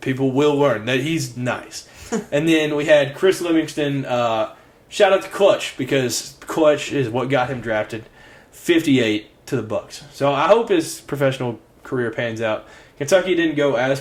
will learn that he's nice. And then we had Chris Livingston. Shout out to Clutch, because Clutch is what got him drafted. 58 to the Bucks. So I hope his professional career pans out. Kentucky didn't go as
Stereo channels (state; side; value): identical; both; correlation 1.00